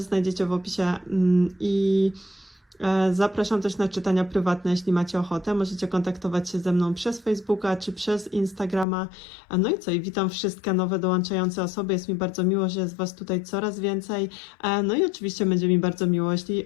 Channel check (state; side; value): drops out; right; at 8.8 s